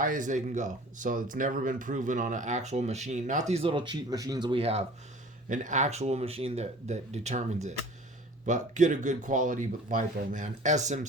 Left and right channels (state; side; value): normal; both; correlation 0.46